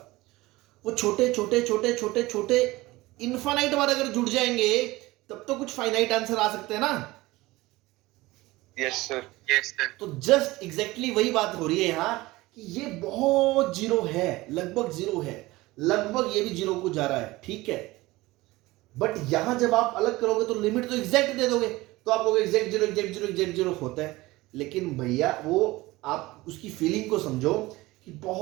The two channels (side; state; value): left; quieter; 19.7 dB